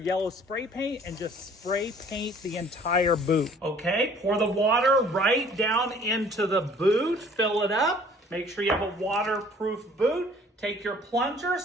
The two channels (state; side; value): normal; both; correlation 0.54